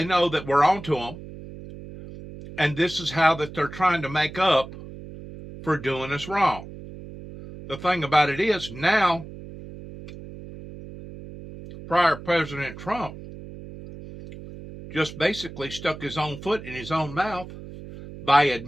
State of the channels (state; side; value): noise; right; hum, 14 dB below the sound